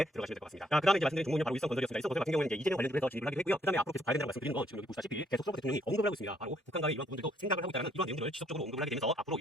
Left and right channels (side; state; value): both; normal; correlation 0.69